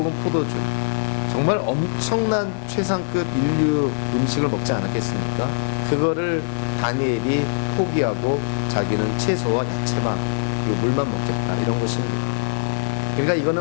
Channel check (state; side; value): silent; right; digital silence